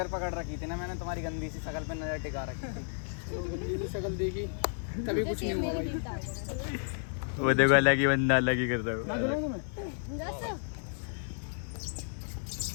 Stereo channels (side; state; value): right; silent; digital silence